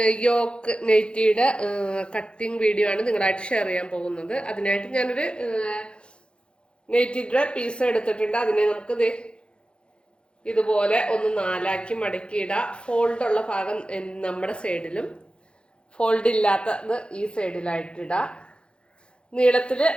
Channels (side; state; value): right; late; 0.055 ms